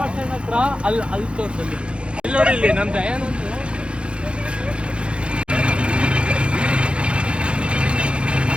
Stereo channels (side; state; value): left; late; 0.057 ms